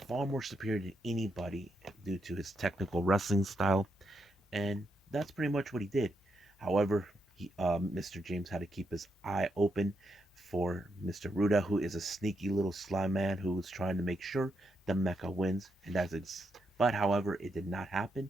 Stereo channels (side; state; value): both; normal; correlation 0.81